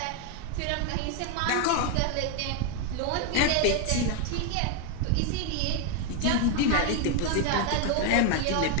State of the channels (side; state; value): both; different; correlation 0.01